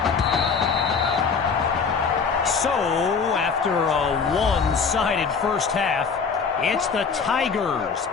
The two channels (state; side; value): quieter; right; 5.6 dB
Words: So, after a one-sided first half, it's the Tigers